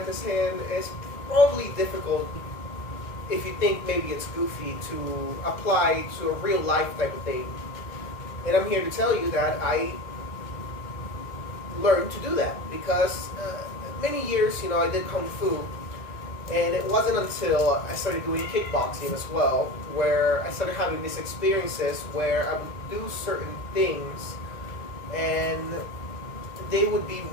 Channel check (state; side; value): late; right; 1.9 ms